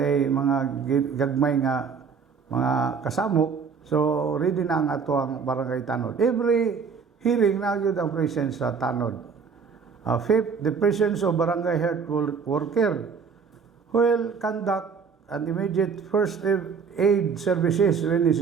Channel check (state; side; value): quieter; left; 5.8 dB